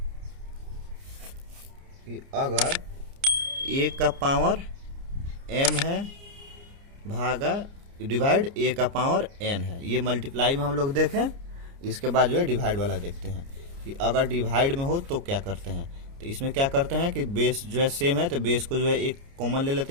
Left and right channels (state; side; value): late; left; 29 ms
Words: कि अगर a का पावर m है भागा डिवाइड a का पावर n है, ये मल्टीप्लाई में हम लोग देखें। इसके बाद जो है डिवाइड वाला देखते हैं कि अगर डिवाइड में हो तो क्या करते हैं। तो इसमें क्या करते हैं कि बेस जो है सेम है तो बेस को जो है एक कॉमन ले